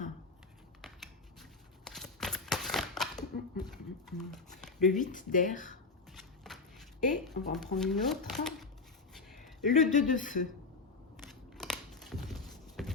le 8 d'air, et on va en prendre une autre, le 2 de feu.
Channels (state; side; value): quieter; right; 4.0 dB